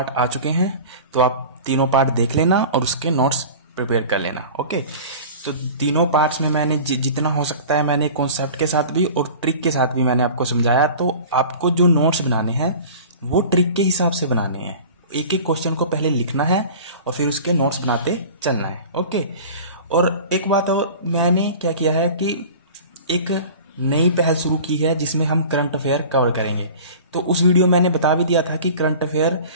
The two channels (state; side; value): inverted; both; correlation -0.39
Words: आ चुके हैं, तो आप तीनों पार्ट देख लेना और उसके नोट्स प्रिपेयर कर लेना। ओके, तो तीनों पार्ट्स में मैंने जितना हो सकता है मैंने कॉन्सेप्ट के साथ भी और ट्रिक के साथ भी मैंने आपको समझाया। तो आपको जो नोट्स बनाने हैं वो ट्रिक के हिसाब से बनाने हैं। एक एक क्वेश्चन को पहले लिखना है और फिर उसके नोट्स बनाते चलना है। ओके, और एक बात और मैंने क्या किया है कि एक नई पहल शुरू की है जिसमें हम करंट अफेयर कवर करेंगे। तो उस वीडियो में मैंने बता भी दिया था कि करंट अफेयर